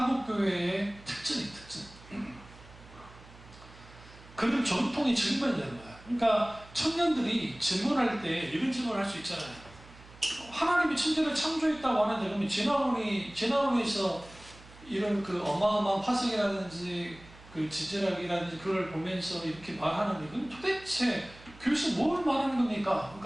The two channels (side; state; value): right; noise; hum, 21 dB below the sound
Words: 특징이에요. 특징. 그런 전통이 증명되는 거야. 그러니까 청년들이 질문할 때 이런 질문을 할 수 있잖아요. 하나님이 천지를 창조했다고 하는데 그러면 진화론에서 이런 그 어마어마한 화석이라든지 그 지질학이라든지 그걸 보면서 이렇게 말하는 이건 도대체 교수 뭘 말하는 겁니까?